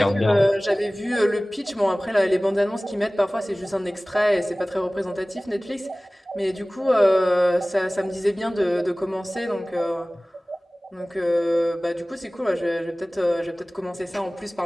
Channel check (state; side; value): normal; both; correlation 0.98